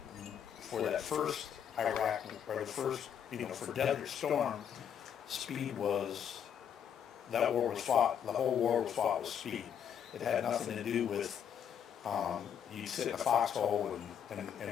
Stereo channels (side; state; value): right; quieter; 8.5 dB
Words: for that first Iraq, or the first, for Desert Storm, speed was, that war was fought, the whole war was fought with speed. It had nothing to do with, you sit in a foxhole